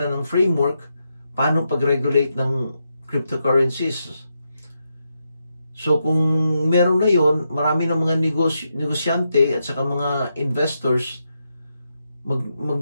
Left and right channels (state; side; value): inverted; both; correlation -0.84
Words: ng framework paano pag-regulate ng cryptocurrencies. So kung meron na yon, marami ng mga negosyante at saka mga investors